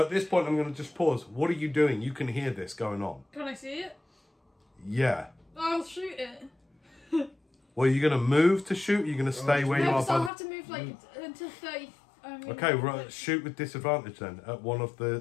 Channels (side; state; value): right; drops out; at 10.3 s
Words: this point, I'm going to just pause. What are you doing? You can hear this going on. Can I see it? Yeah. I'll shoot it. Well, are you going to move to shoot? Or are you going to stay where you No, are? because I'll have to move like until 30. Okay, right. Shoot with disadvantage then at one of